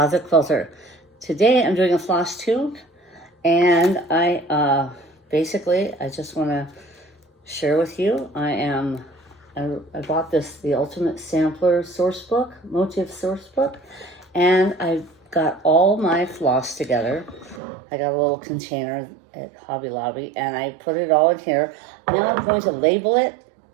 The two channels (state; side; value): drops out; left; at 17.6 s